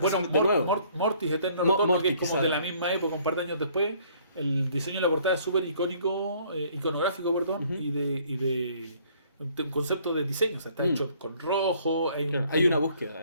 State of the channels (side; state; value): both; inverted; correlation -0.60